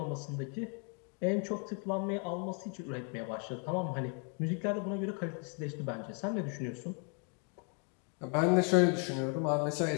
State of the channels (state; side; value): quieter; right; 38.8 dB